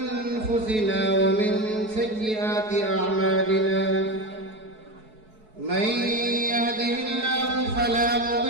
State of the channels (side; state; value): left; late; 4.6 ms